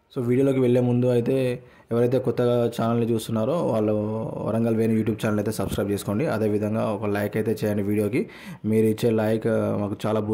సో వీడియోలోకి వెళ్ళే ముందు అయితే ఎవరైతే కొత్తగా ఛానల్ని చూస్తున్నారో వాళ్ళు వరంగల్ వేణు యూట్యూబ్ ఛానల్ అయితే సబ్స్క్రైబ్ చేసుకోండి. అదేవిధంగా ఒక లైక్ అయితే చేయండి. వీడియోకి మీరు ఇచ్చే లైక్ మాకు చాలా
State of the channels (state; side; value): identical; both; correlation 1.00